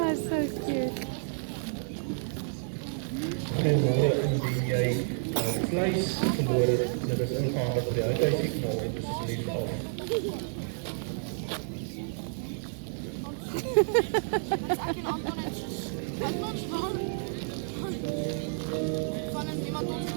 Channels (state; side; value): silent; left; digital silence